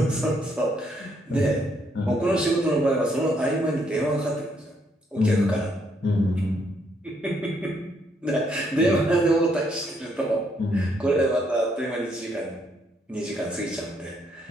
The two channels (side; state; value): both; normal; correlation 0.72